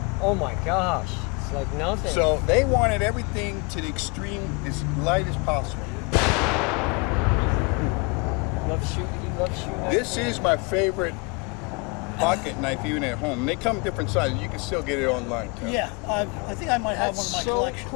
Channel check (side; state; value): right; quieter; 30.1 dB